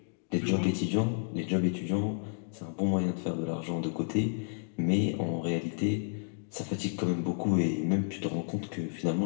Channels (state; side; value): silent; right; digital silence